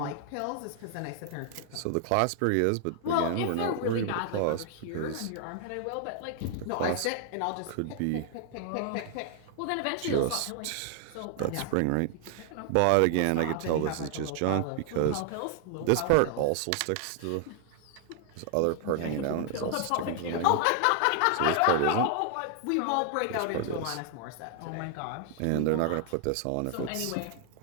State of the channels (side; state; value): both; different; correlation 0.00